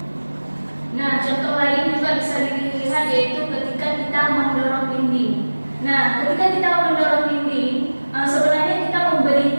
Nah, contoh lain juga bisa dilihat, yaitu ketika kita mendorong dinding. Nah, ketika kita mendorong dinding, sebenarnya kita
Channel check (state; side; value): inverted; both; correlation -1.00